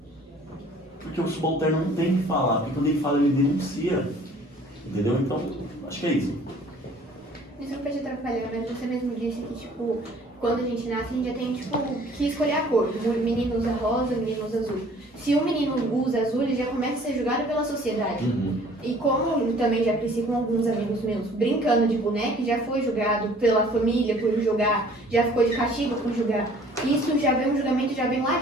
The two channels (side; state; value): both; normal; correlation 0.53